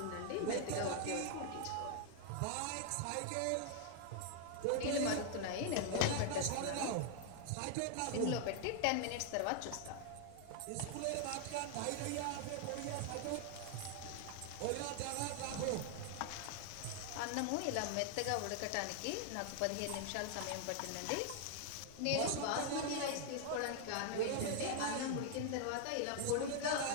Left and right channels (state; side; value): different; both; correlation 0.00